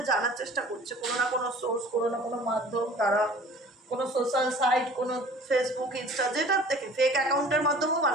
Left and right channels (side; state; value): both; normal; correlation 0.47